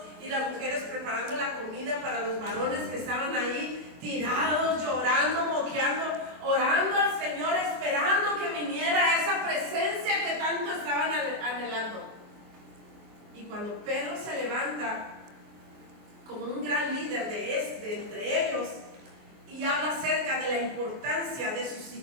y las mujeres preparando la comida para los varones que estaban ahí tirados, llorando, moqueando, orando al Señor, esperando que viniera esa presencia que tanto estaban anhelando. Y cuando Pedro se levanta como un gran líder de entre ellos y habla acerca de la importancia de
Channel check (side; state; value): left; late; 23 ms